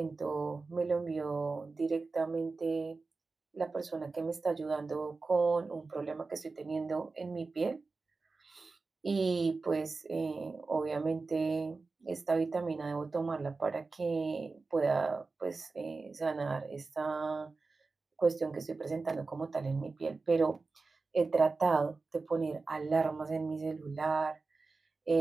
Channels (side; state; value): left; quieter; 4.0 dB